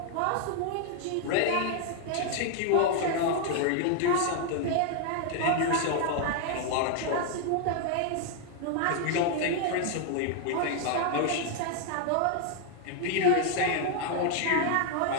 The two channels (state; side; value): different; both; correlation 0.00